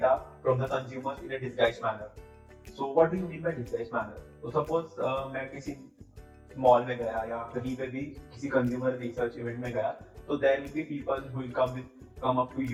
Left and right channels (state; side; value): identical; both; correlation 1.00